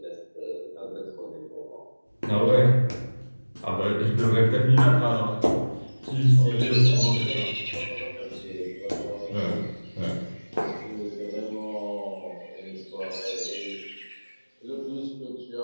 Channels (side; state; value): both; inverted; correlation -1.00